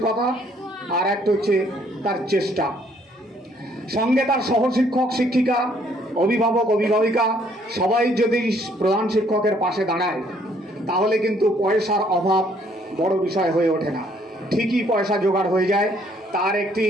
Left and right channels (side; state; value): both; normal; correlation 0.64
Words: আর একটা হচ্ছে তার চেষ্টা। সঙ্গে তার সহশিক্ষক শিক্ষিকা, অভিভাবক অভিভাবিকা সবাই যদি প্রধান শিক্ষকের পাশে দাঁড়ায় তাহলে কিন্তু পয়সার অভাব বড় বিষয় হয়ে ওঠে না, ঠিকই পয়সা জোগাড় হয়ে যায়। তার একটি